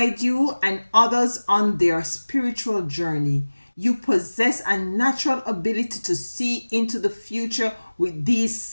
you and others on their spiritual journey. You possess a natural ability to see into the future with these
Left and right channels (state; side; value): inverted; both; correlation -1.00